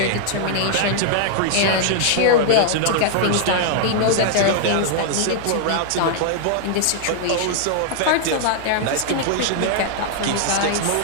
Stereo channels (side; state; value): both; different; correlation -0.01